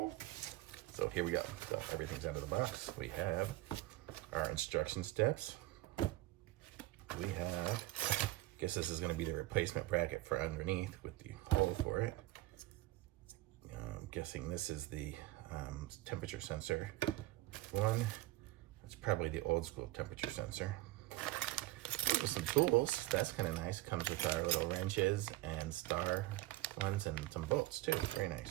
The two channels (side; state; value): left; quieter; 17.6 dB